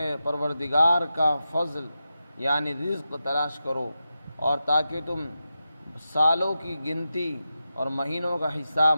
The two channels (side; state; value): both; inverted; correlation -0.91